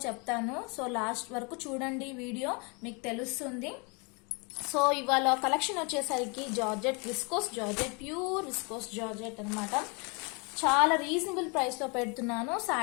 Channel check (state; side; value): quieter; right; 31.9 dB